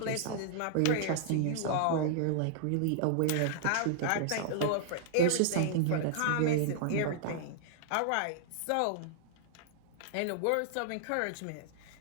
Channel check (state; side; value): different; both; correlation -0.01